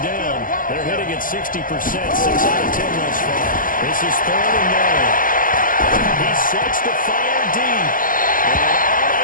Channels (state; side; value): late; right; 0.40 ms